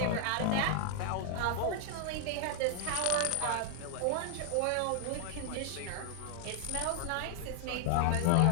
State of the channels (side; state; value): both; different; correlation 0.00